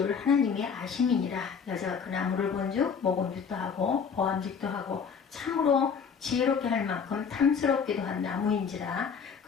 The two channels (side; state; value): right; quieter; 6.3 dB